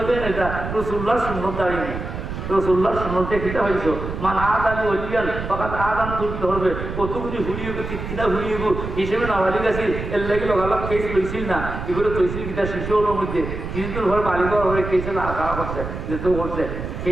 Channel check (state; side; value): noise; right; rumble, 6 dB below the sound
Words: এটা রসুল্লাহ সুন্নত দাঁড়িয়ে রসুল্লাহ সুন্নতে কিতা হয়েছ মান আদ আলী ওলিয়ান ফাকাত আদান তুহিবিল ধরবে কতগুলি হুলিয়ে কিনা হুলিয়ে হিসেবে নাবালি গেছিল এর লাগে লগালগ কেস লইছিল না এগুলো তৈছিল কিতা শিশু হলোর মধ্যে কিছুদিন ঘর বালিগড় হয়ে কেসে খাওয়া করছে যেতেও করছে